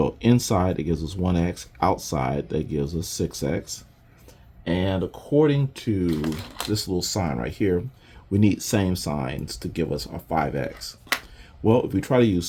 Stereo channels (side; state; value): both; identical; correlation 1.00